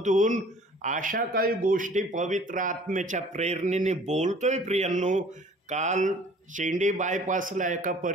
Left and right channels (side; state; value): both; normal; correlation 0.51